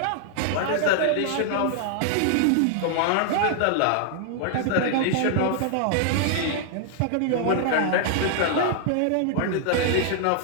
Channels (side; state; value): both; different; correlation -0.01